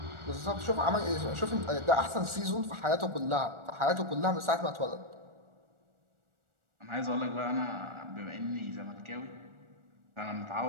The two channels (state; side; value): late; left; 1.4 ms